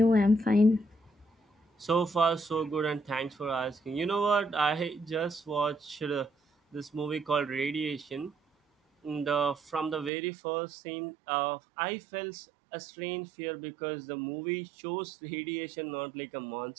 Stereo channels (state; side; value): drops out; left; at 10.1 s